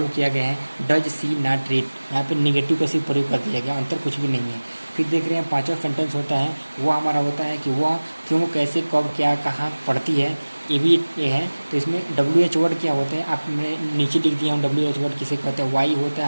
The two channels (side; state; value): both; inverted; correlation -1.00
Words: किया गया है। डज सी नॉट रीड, यहाँ पे नेगेटिव का सिर्फ प्रयोग कर दिया गया, अंतर कुछ भी नहीं है। फिर देख रहे हैं पांचवा सेंटेंस होता है, वो हमारा होता है कि वह क्यों, कैसे, कब, क्या, कहाँ पढ़ती है। ये है। तो इसमें WH वर्ड क्या होते हैं, आपने नीचे लिख दिया हूँ। WH वर्ड किसे कहते हैं, वाई होता